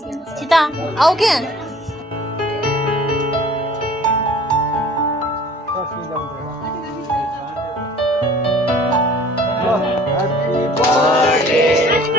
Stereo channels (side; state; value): both; normal; correlation 0.50